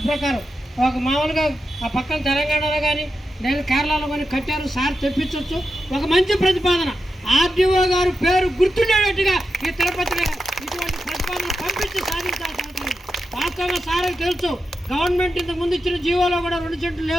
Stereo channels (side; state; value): both; normal; correlation 0.89